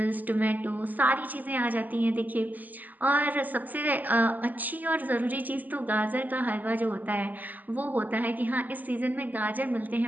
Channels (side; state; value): left; late; 0.083 ms